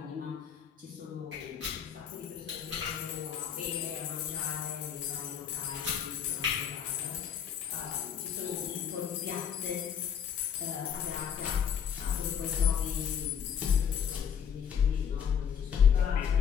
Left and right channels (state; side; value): quieter; right; 8.0 dB